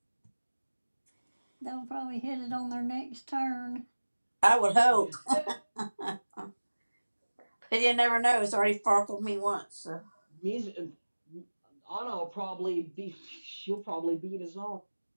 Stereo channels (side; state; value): both; inverted; correlation -1.00